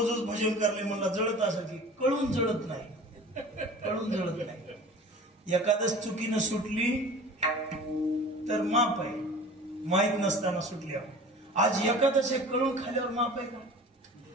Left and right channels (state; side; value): normal; both; correlation 0.41